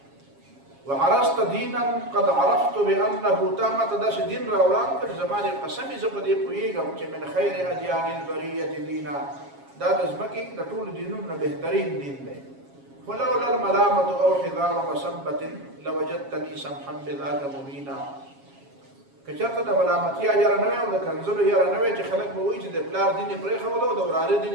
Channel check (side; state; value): left; late; 7.3 ms